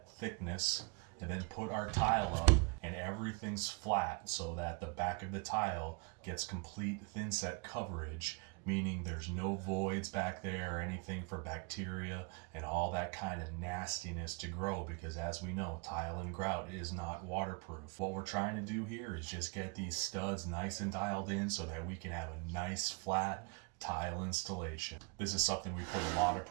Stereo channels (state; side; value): quieter; left; 32.7 dB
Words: thickness and then put our tile up and everything's flat so that the back of the tile gets complete thin set coverage, meaning there's no voids back there or anything for bacteria and all that kind of nastiness to grow, because as we know, tile and grout is not waterproof. What we're trying to do here is just get these studs nice and dialed in so that we can have a nice flat tile installation. This is something we put a lot of